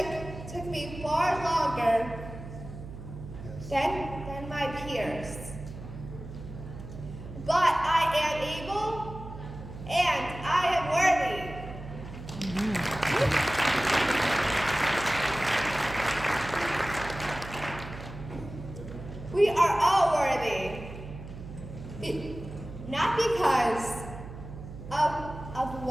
took me far longer than my peers. But I am able and I am worthy. We are all worthy. Not because of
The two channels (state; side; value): noise; right; hum, 12 dB below the sound